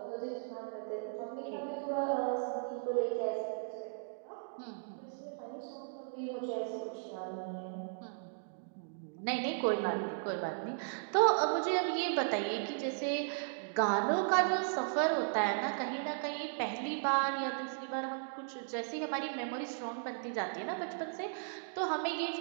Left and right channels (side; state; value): left; silent; digital silence